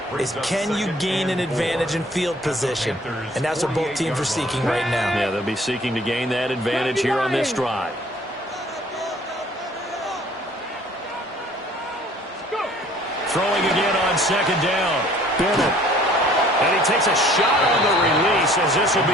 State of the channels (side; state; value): both; normal; correlation 0.55